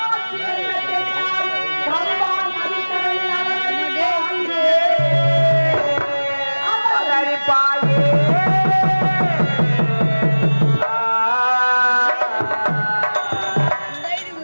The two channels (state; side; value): inverted; both; correlation -1.00